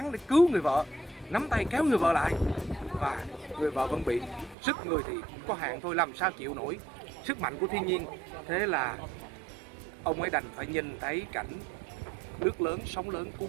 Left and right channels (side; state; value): left; drops out; at 4.5 s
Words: để cứu người vợ, nắm tay kéo người vợ lại, và người vợ vẫn bị sức người thì có hạn thôi, làm sao chịu nổi sức mạnh của thiên nhiên. Thế là ông ấy đành phải nhìn thấy cảnh nước lớn, sóng lớn